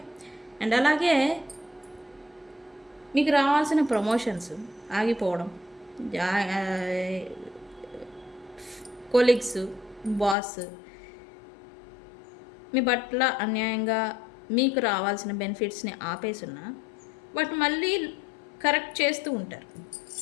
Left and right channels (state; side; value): drops out; right; at 10.4 s